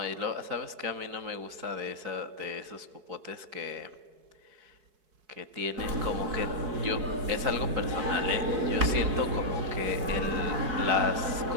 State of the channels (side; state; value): left; late; 4.7 ms